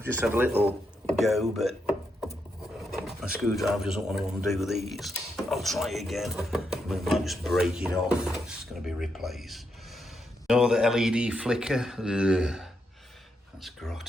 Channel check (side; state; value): both; normal; correlation 0.81